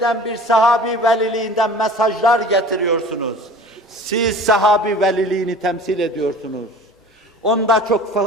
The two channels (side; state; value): both; normal; correlation 0.43